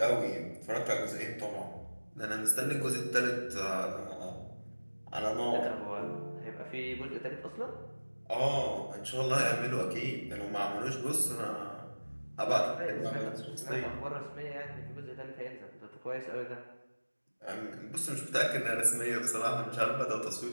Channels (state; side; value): inverted; both; correlation -1.00